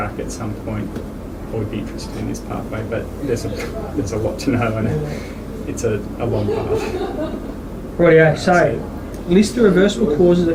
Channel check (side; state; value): both; identical; correlation 1.00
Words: at some point I would be interested in this pathway, but there's a lot to know, and it's a long path. Rightio, so list the reversible causes